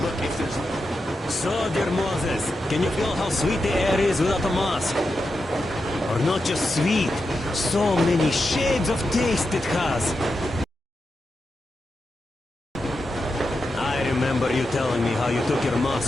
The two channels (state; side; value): normal; both; correlation 0.88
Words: Look, if there's... So, dear Moses, can you feel how sweet the air is without a mask? Or not just sweet, so many shades of taste it has. I remember you telling me how you took your